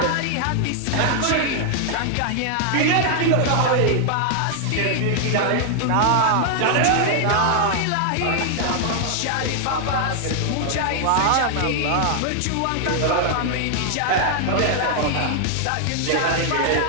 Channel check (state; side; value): different; both; correlation 0.00